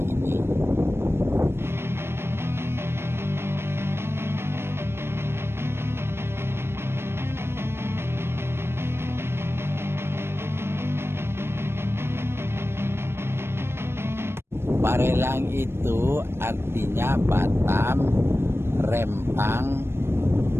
ini. Barelang itu artinya Batam, Rempang,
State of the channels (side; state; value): left; late; 0.12 ms